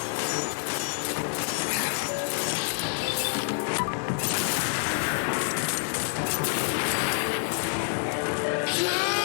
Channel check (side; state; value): right; silent; digital silence